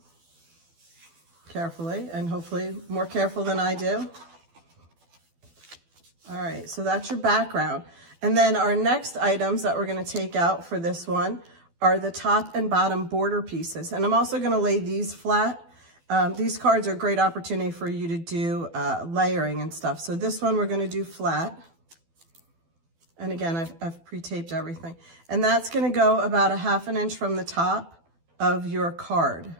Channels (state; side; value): late; left; 12 ms